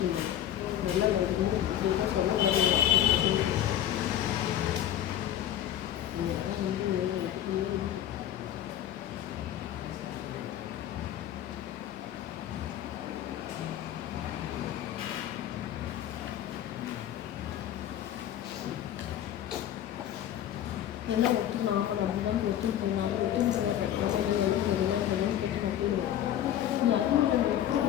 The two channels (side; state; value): right; quieter; 11.4 dB